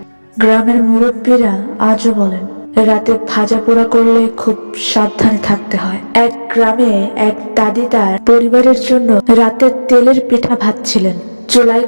গ্রামের মুরব্বীরা আজও বলেন, রাতে ভাজা পোড়া করলে খুব সাবধানে থাকতে হয়। এক গ্রামে এক দাদি তার পরিবারের জন্য রাতে তেলের পিঠা ভাজছিলেন। চুলায়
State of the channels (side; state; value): both; inverted; correlation -1.00